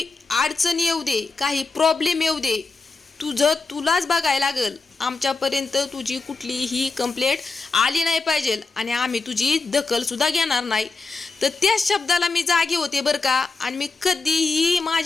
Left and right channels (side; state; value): right; quieter; 4.0 dB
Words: अडचण येऊ दे, काही प्रॉब्लेम येऊ दे, तुलाच बघायला लागल। आमच्यापर्यंत तुझी कुठलीही कंप्लेंट आली नाही पाहिजे आणि आम्ही तुझी दखल सुद्धा घेणार नाही। तर त्या शब्दाला मी जागे होते बरं का। आणि मी कधीही